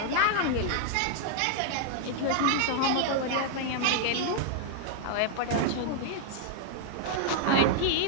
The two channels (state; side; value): different; both; correlation 0.00